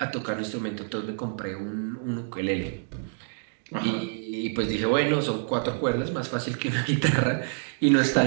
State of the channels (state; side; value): silent; left; digital silence